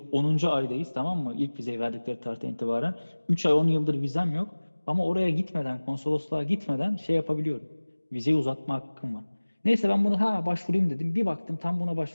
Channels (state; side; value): inverted; both; correlation -1.00